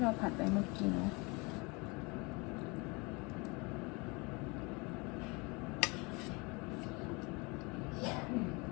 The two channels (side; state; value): right; quieter; 27.9 dB